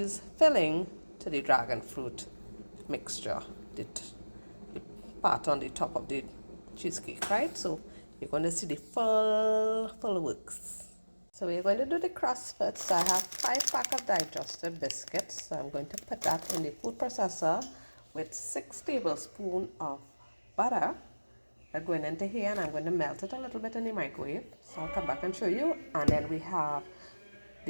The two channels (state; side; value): inverted; both; correlation -1.00